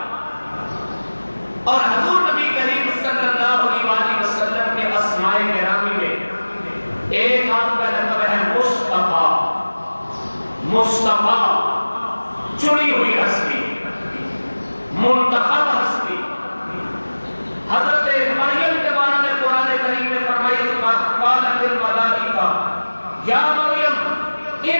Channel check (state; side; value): inverted; both; correlation -1.00